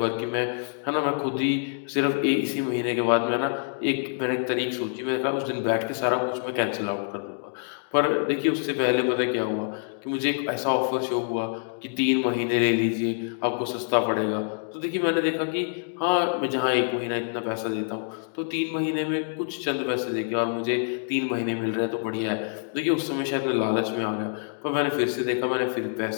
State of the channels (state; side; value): silent; right; digital silence